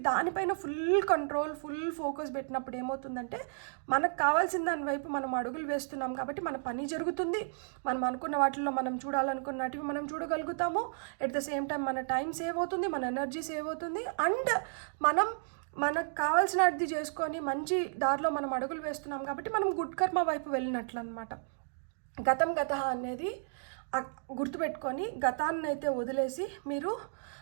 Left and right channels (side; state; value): left; silent; digital silence